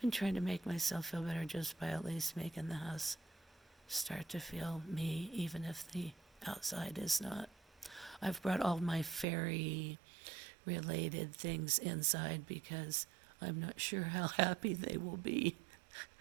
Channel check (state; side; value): drops out; left; at 9.2 s